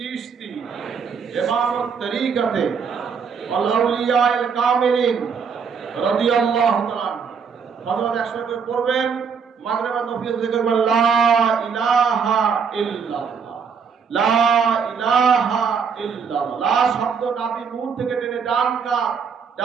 ইমামুত তরিকাতে ওয়াল আউলিয়ায়ে কামিলিন রাদিয়াল্লাহু তাআলা। ফজর 100 করে পড়বেন, মাগরিব আর নফিল জিকির করবেন, লা ইলাহা ইল্লাল্লাহ, লা ইলাহা ইল্লাল্লাহ। লা শব্দ নাভি মূল থেকে টেনে ডান কাত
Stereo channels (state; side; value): quieter; left; 6.2 dB